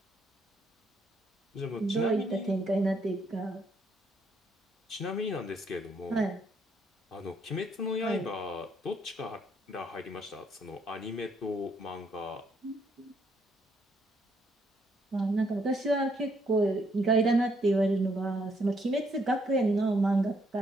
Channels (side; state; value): both; normal; correlation 0.71